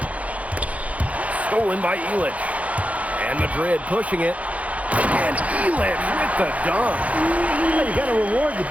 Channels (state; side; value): late; left; 0.067 ms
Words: Stolen by Illich. And Madrid pushing it. And Illich with the dunk. Yeah, you got to reward the